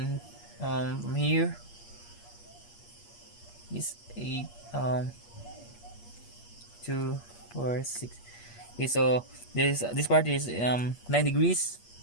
from here is 8 2 4 6. Okay, so this part is 9 degrees.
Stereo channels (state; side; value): late; right; 8.5 ms